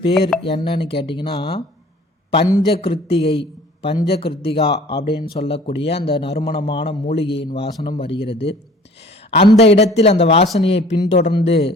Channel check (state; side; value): normal; both; correlation 0.50